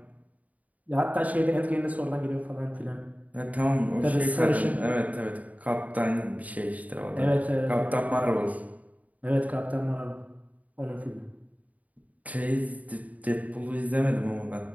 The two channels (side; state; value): left; late; 0.072 ms